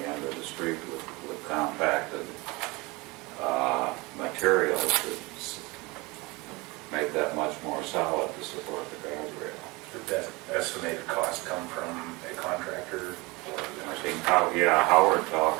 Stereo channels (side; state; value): left; quieter; 24.5 dB